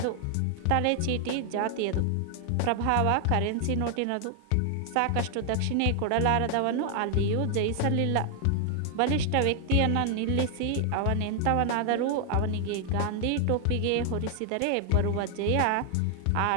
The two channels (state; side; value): different; both; correlation 0.00